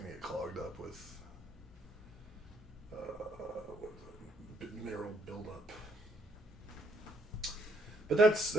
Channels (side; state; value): both; normal; correlation 0.71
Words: get clogged up with mineral buildup. But